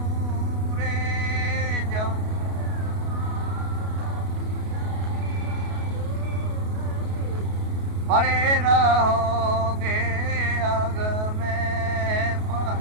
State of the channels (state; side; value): late; left; 33 ms